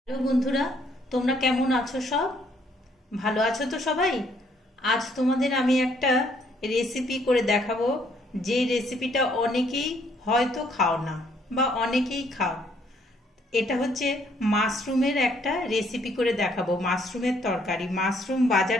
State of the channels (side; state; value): both; normal; correlation 0.67